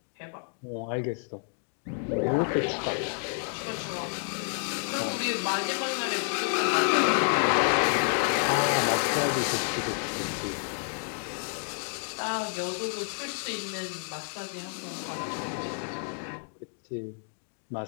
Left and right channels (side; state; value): right; silent; digital silence